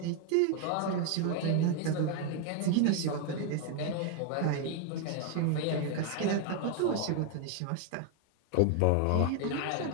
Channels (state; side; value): different; both; correlation 0.01